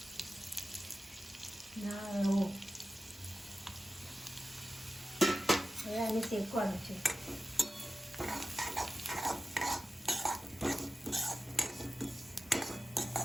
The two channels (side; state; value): both; normal; correlation 0.93